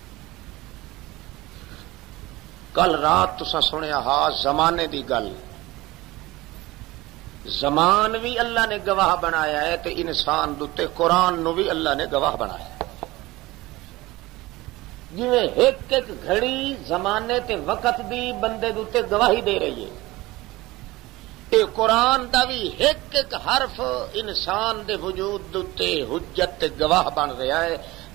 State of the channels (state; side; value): quieter; left; 19.8 dB